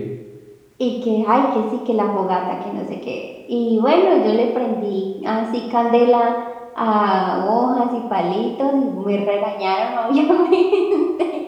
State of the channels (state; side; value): identical; both; correlation 1.00